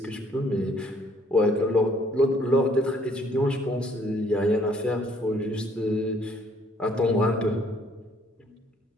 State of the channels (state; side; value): normal; both; correlation 0.64